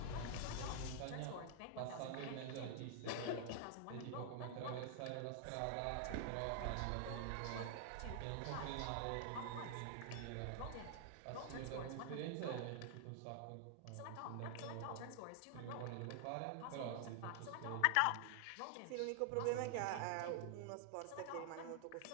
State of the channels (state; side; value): different; both; correlation 0.00